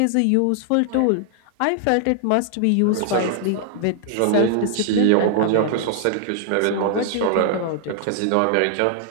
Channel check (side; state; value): both; different; correlation 0.00